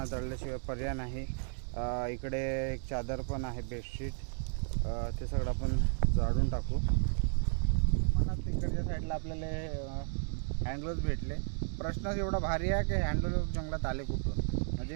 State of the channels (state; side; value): silent; left; 56 dB below the other